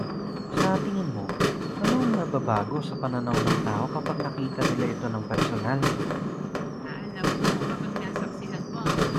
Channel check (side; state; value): both; identical; correlation 1.00